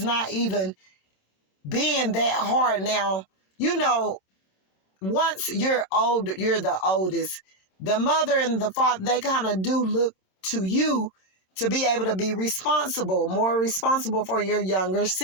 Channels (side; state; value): right; late; 26 ms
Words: not even being that hard. Now, once you're old, you're the oldest. The mother and the father, they kind of do look to you to be able to be responsible, more responsible for your younger